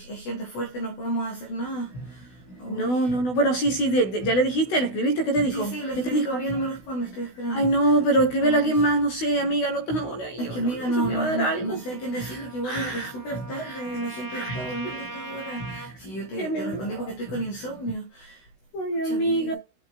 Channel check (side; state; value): right; late; 16 ms